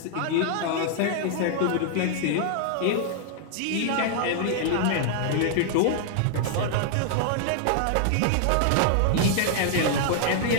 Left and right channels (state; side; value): different; both; correlation -0.01